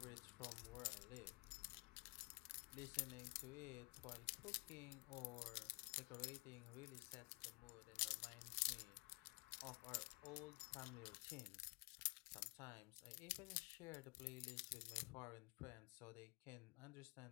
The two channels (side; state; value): right; quieter; 30.0 dB